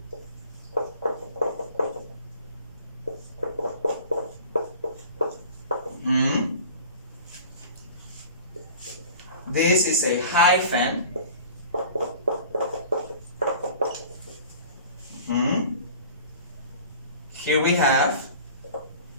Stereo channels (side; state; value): both; inverted; correlation -0.43